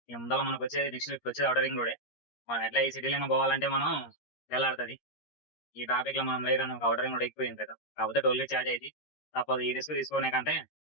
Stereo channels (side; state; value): right; late; 13 ms